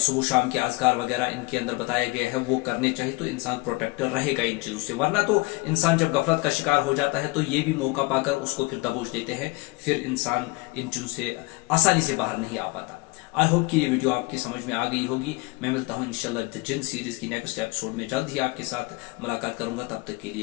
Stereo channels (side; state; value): right; quieter; 24.6 dB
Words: شام کے اذکار وغیرہ ان کے اندر بتائے گئے ہیں وہ کرنے چاہیے، تو انسان پروٹیکٹ رہے گا ان چیزوں سے۔ ورنہ تو انسان جب غفلت کا شکار ہو جاتا ہے تو یہ بھی موقع پا کر اس کو پھر دبوچ دیتے ہیں، پھر انسان ان چیزوں سے آسانی سے باہر نہیں آ پاتا۔ آئی ہوپ کہ یہ ویڈیو آپ کی سمجھ میں آ گئی ہوگی۔ میں ملتا ہوں انشاءاللہ دی جن سیریز کی نیکسٹ ایپیسوڈ میں، جلد ہی آپ کے ساتھ ملاقات کروں گا۔ تب تک کے